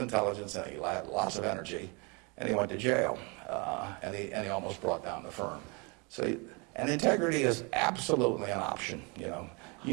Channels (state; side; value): quieter; left; 30.4 dB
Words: intelligence and he had lots of energy, and he went to jail, and he almost brought down the firm. So, and integrity is absolutely an option.